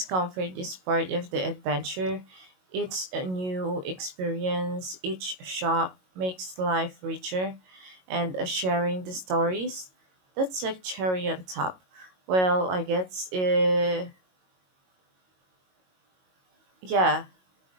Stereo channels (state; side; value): late; left; 22 ms